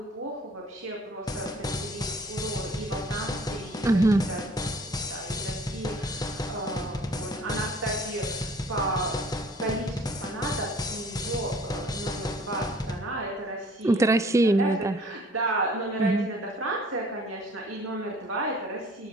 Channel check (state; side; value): normal; both; correlation 0.53